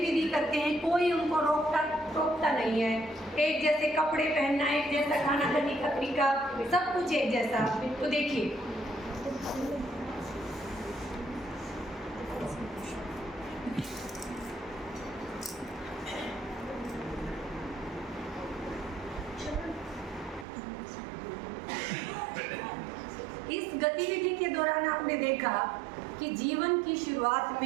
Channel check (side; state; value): left; drops out; at 20.5 s